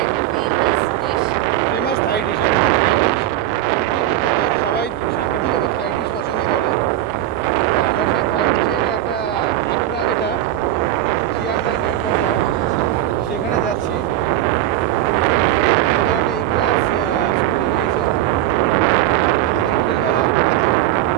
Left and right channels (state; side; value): quieter; left; 13.3 dB